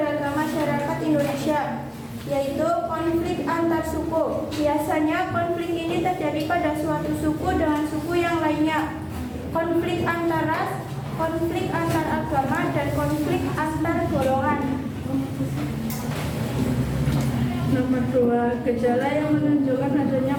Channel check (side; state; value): both; identical; correlation 1.00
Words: masyarakat Indonesia, yaitu konflik antar suku. Biasanya konflik ini terjadi pada suatu suku dengan suku yang lainnya. Konflik antar ras, konflik antar agama, dan konflik antar golongan. Nomor 2, gejala yang menunjukkan adanya